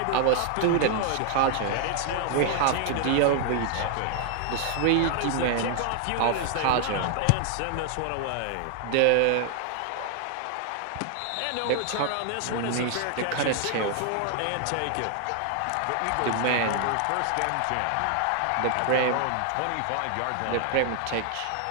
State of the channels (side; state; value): both; different; correlation 0.00